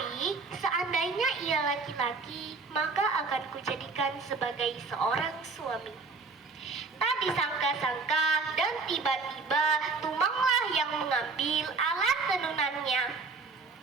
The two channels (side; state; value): left; quieter; 4.2 dB